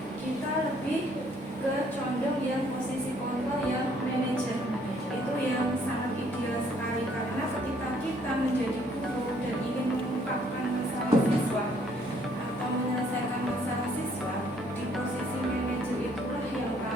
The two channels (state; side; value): normal; both; correlation 0.64